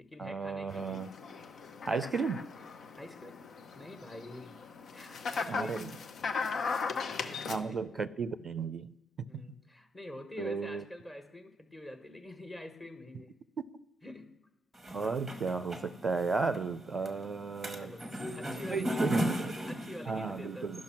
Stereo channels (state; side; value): normal; both; correlation 0.79